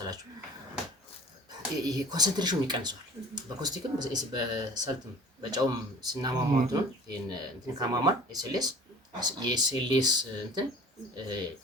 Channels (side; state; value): both; normal; correlation 0.44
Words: ይሄ ኮንሰንትሬሽኑ ይቀንሰዋል። በኮስቲክም በሰልትም በጨውም ስናማማው እንትን ካማማን የኤስኤልኤስ እንትን